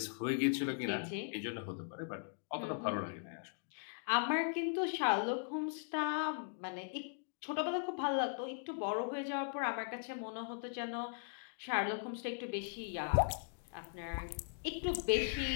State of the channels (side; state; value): right; silent; digital silence